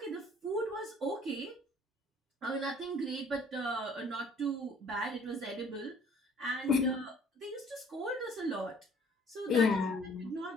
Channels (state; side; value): normal; both; correlation 0.56